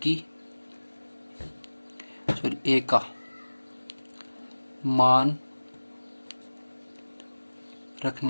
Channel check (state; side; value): inverted; both; correlation -1.00